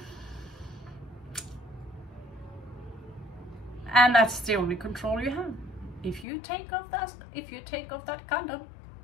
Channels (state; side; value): drops out; right; at 6.2 s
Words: and that's the only control you have. If you take off that condom,